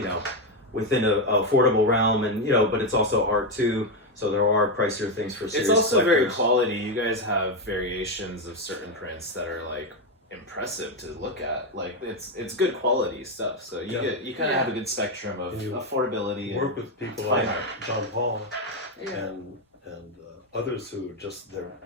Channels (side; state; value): both; normal; correlation 0.07